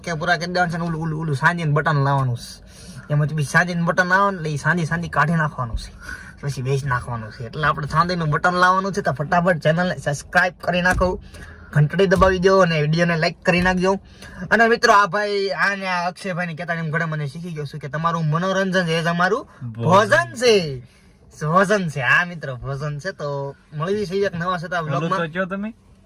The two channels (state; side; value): identical; both; correlation 1.00